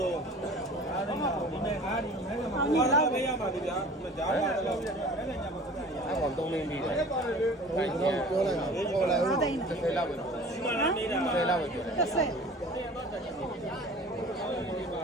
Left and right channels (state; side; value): normal; both; correlation 0.44